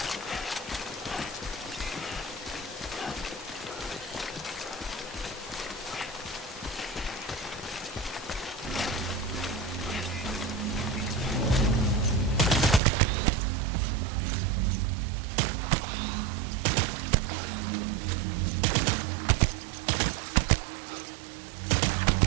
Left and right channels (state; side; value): drops out; left; at 12.8 s